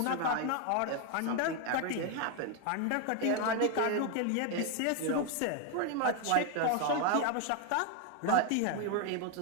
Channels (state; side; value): different; both; correlation 0.01